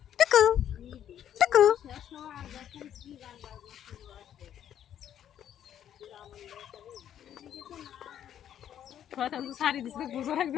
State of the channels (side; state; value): right; quieter; 10.2 dB